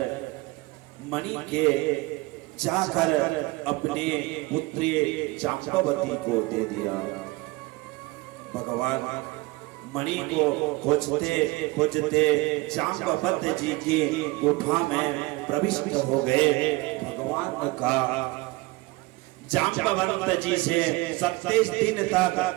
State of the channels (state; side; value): quieter; left; 22.7 dB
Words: मणि के जाकर अपने पुत्री जाम्बवती को दे दिया। भगवान मणि को खोजते खोजते जाम्बवंत जी की गुफा में प्रविष्ट हो गए। भगवान का जाम्बवंत जी से 27 दिन तक